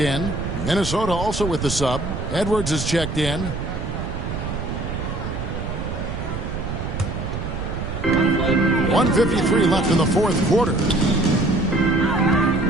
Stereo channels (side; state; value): right; noise; rumble, 5 dB below the sound